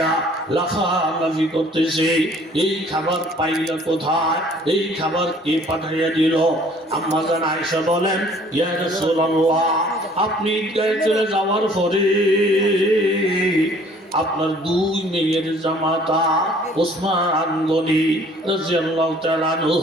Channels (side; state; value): both; normal; correlation 0.55